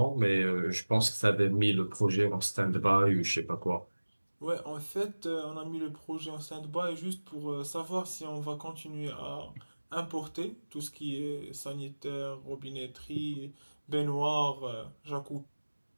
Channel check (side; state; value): both; inverted; correlation -1.00